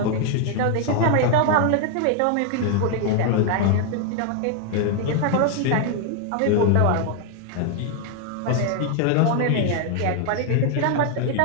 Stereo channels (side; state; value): both; different; correlation 0.00